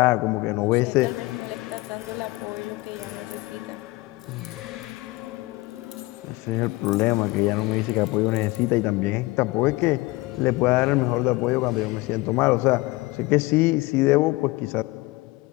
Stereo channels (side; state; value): right; quieter; 21.7 dB